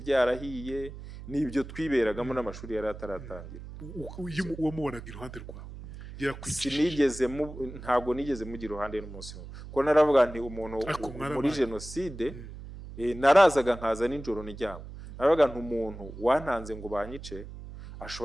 n'ibyo twiberagamo, n'amashuri yari ataratangira. Wamubonaga iruhande rwawe? Ntabwo nigeze mugira iruhande n'umunsi umwe, kuko naravuga nti umuntu muri jenoside, narazaga nkaza nijoro nijyama. Naravuga nti umuntu wantanze ngo banyice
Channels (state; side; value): noise; right; hum, 13 dB below the sound